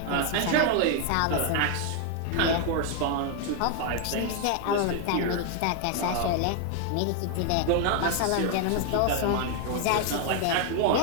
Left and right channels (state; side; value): different; both; correlation 0.00